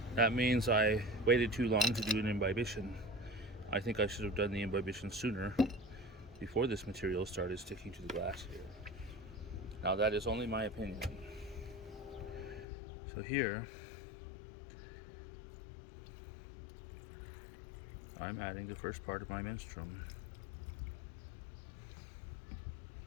that means I waited too long to do an imbibition. I think I should have done the imbibition sooner, before this material started sticking to the glass here. Now that is only my opinion. So here, I'm adding the first part of my menstruum,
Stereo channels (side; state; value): right; drops out; at 12.7 s